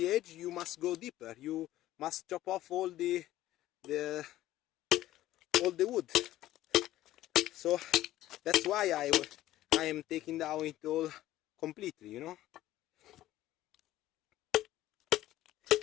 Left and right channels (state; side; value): quieter; right; 14.7 dB